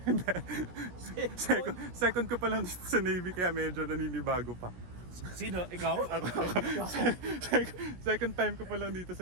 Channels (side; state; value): left; late; 17 ms